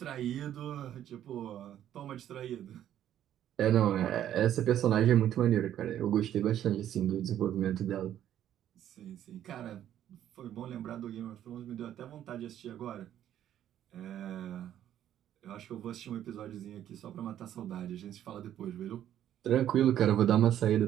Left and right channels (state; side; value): quieter; left; 11.2 dB